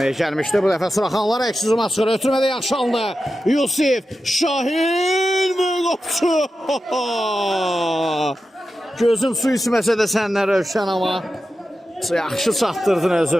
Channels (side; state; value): both; normal; correlation 0.92